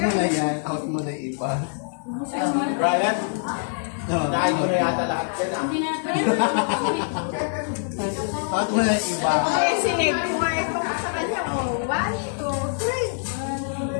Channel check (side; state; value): right; silent; digital silence